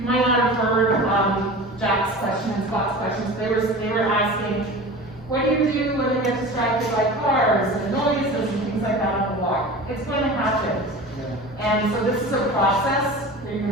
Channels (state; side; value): normal; both; correlation 0.35